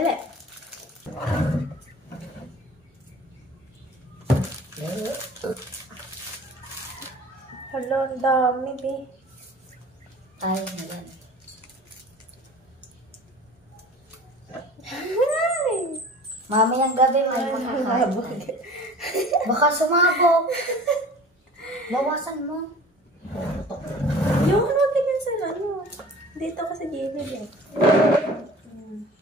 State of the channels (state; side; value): normal; both; correlation 0.43